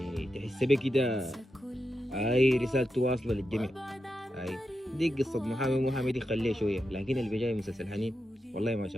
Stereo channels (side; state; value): both; normal; correlation 0.88